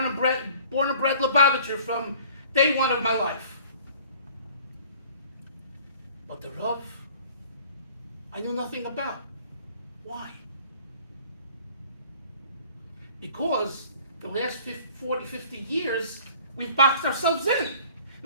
and bred Lubavitcher from day one of my life. But the Rav, I knew nothing about. Why? Because the last 40, 50 years, we've boxed ourselves in.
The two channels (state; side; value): inverted; both; correlation -0.52